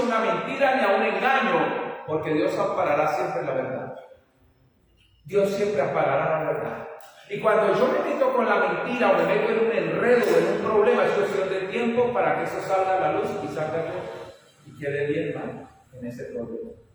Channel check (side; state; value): both; identical; correlation 1.00